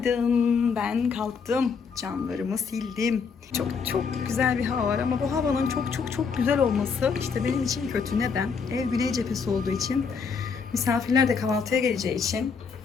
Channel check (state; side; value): quieter; right; 5.6 dB